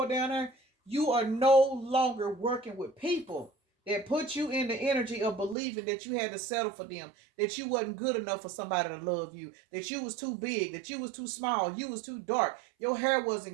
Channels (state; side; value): drops out; left; at 5.6 s